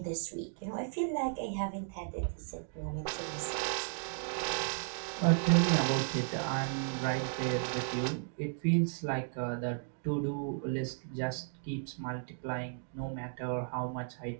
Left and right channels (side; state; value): left; silent; digital silence